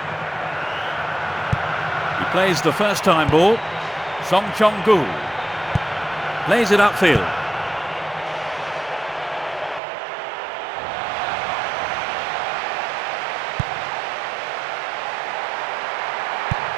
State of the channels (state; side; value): drops out; left; at 9.8 s